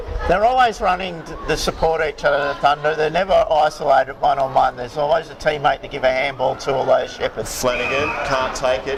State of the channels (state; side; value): identical; both; correlation 1.00